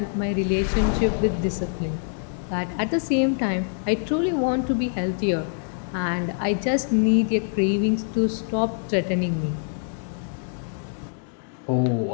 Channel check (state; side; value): silent; right; 62 dB below the other